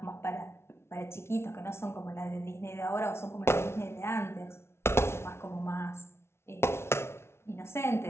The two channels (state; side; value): late; right; 0.12 ms